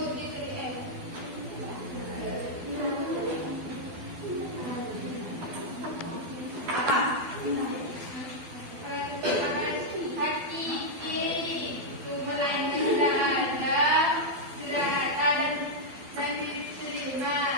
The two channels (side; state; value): left; late; 12 ms